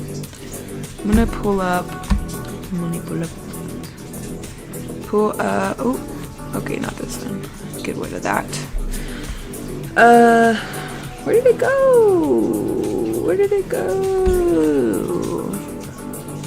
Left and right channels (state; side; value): identical; both; correlation 1.00